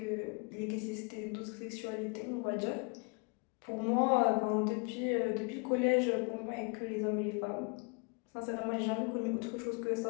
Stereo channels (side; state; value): right; quieter; 33.1 dB